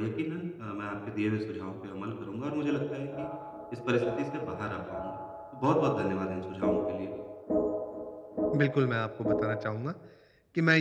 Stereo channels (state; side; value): identical; both; correlation 1.00